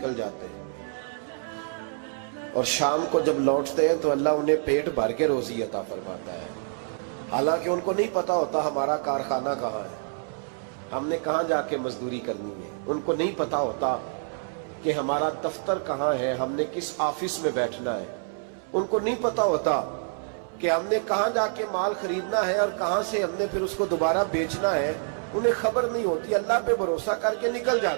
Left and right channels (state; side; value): silent; left; 60 dB below the other